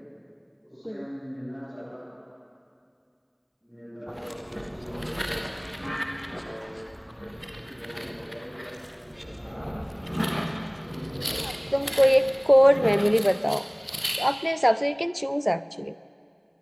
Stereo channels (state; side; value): identical; both; correlation 1.00